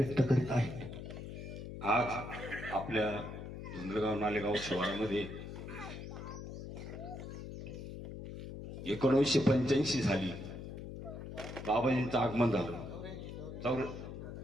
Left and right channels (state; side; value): noise; left; hum, 9 dB below the sound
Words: करीत आहेत. आज आपल्या धुंदलगाव नालेगाव शहरामध्ये 1985 साली बाबाजींचं आगमन झालं.